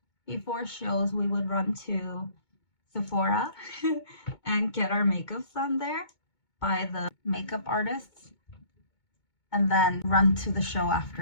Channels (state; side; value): late; right; 2.2 ms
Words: before shows we would run to Sephora and get our makeups done there by the makeup artists, and then run to the show